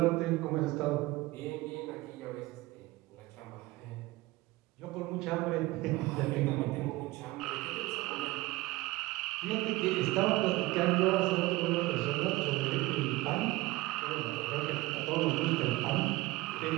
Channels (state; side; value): quieter; left; 19.6 dB